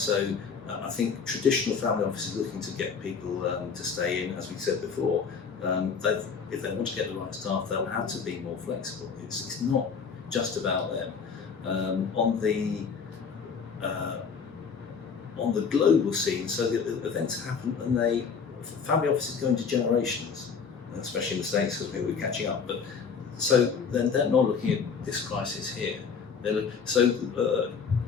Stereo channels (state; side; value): quieter; right; 5.9 dB